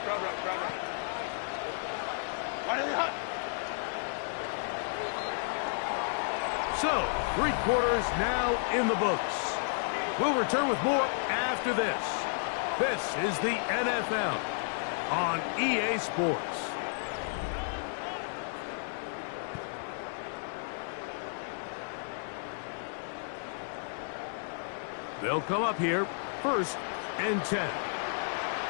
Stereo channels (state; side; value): silent; right; digital silence